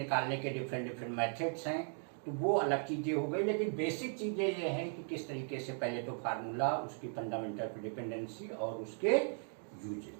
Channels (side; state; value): left; silent; 53 dB below the other